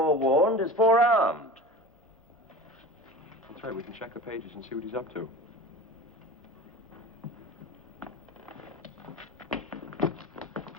is forearmed. That's right, we can check the pages and see what he's up to.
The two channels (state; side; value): normal; both; correlation 0.35